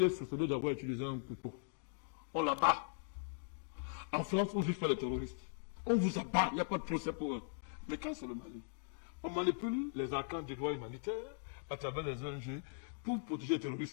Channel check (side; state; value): right; silent; digital silence